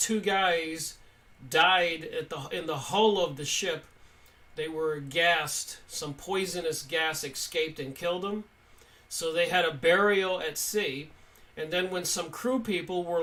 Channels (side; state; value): both; identical; correlation 1.00